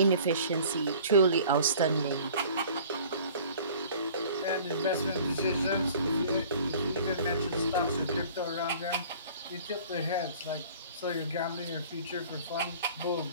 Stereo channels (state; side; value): inverted; both; correlation -0.48